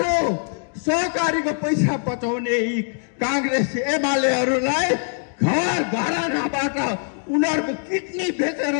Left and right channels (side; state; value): right; silent; 61 dB below the other